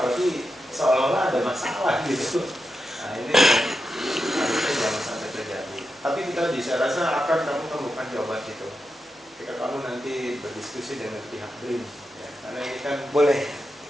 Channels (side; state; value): both; normal; correlation 0.88